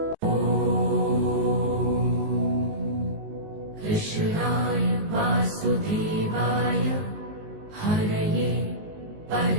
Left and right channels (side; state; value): left; late; 19 ms